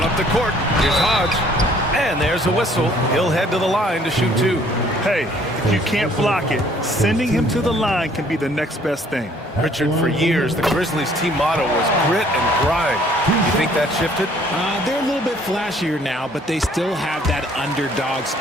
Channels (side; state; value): both; normal; correlation 0.59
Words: up the court. Here's Hodge. And there's a whistle. He'll head to the line to shoot 2. Hey, if you can't block it, sending him to the line can be the next best thing. Richard, for years, the Grizzlies' team motto was grit and grind. You think that shifted? They're a little bit flashier now, but they still have that underdog